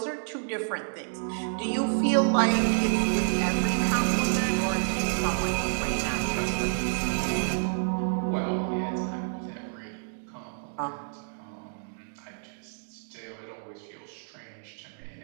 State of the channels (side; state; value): left; silent; digital silence